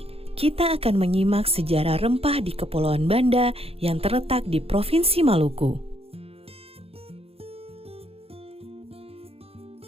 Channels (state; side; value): late; left; 0.28 ms